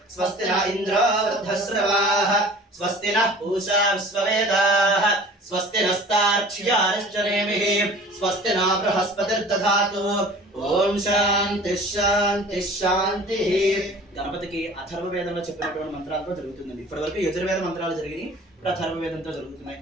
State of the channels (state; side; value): normal; both; correlation 0.45